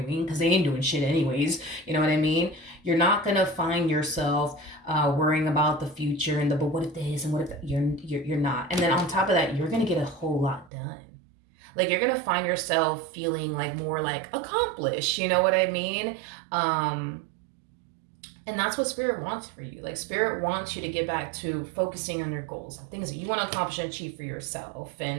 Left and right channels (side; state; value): left; drops out; at 10.7 s